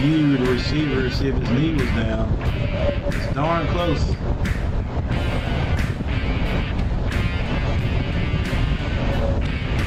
the receiver, see if his knee was down. It's darn close.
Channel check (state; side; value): identical; both; correlation 1.00